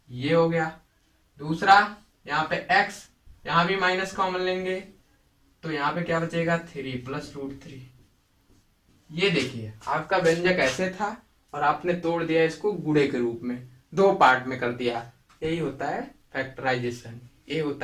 ये हो गया। दूसरा यहाँ पे x, यहां भी माइनस कॉमन लेंगे तो यहाँ पे क्या बचेगा, थ्री प्लस रूट थ्री। ये देखिए आपका व्यंजक ऐसे था और आपने तोड़ दिया इसको गुणे के रूप में, दो पार्ट में कर दिया, यही होता है फैक्टराइजेशन, ये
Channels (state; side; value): identical; both; correlation 1.00